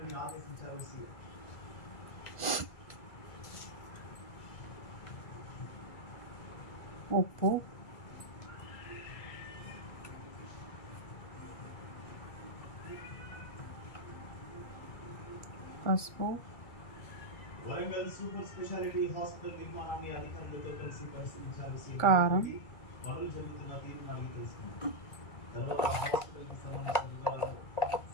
ఉప్పు, పసుపు, కారం,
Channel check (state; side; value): late; right; 2.0 ms